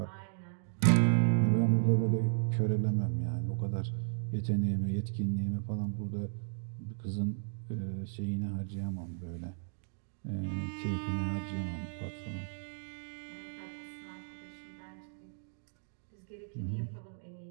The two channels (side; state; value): left; silent; digital silence